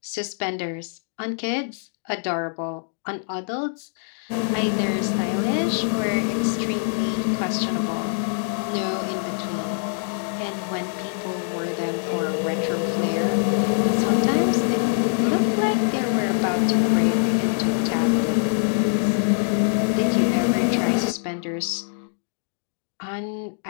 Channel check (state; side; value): silent; right; digital silence